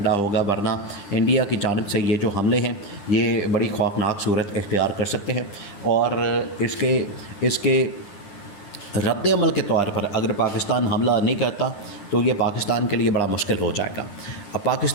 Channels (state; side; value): late; right; 10 ms